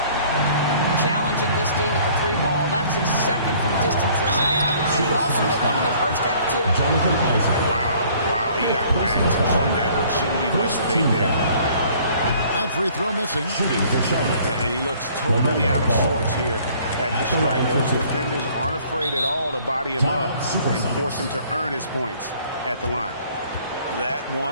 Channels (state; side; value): inverted; both; correlation -0.56